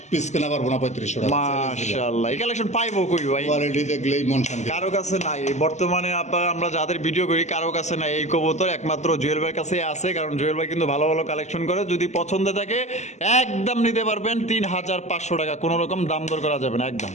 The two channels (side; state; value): right; late; 0.33 ms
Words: পিস কেনা পারবো না 3500 টাকা। মাশাআল্লাহ। এই কালেকশন পাইবো কই ভাই? কোয়ালিটি দেখলেই মন শান্তি। কারো কাছে নাই এই বর্তমানে আমরা যাদের ভিডিও করি, কারো কাছে নাই এই কবুতর, একমাত্র জুয়েল ভাইয়ের কাছে আছে। কারণ জুয়েল ভাই কিন্তু ভালো ভালো কালেকশন করে। যদি পছন্দ থাকে একদম নিতে পারবেন 3500 টাকা, কোনো রকম দাম দর করা যাবে না একদম।